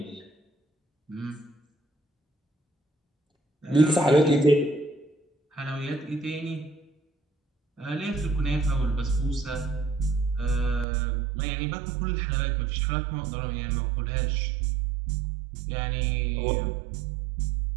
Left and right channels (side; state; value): left; drops out; at 10.9 s